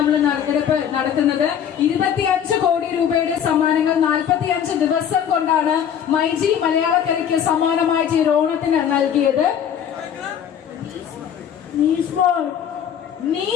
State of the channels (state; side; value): quieter; right; 8.9 dB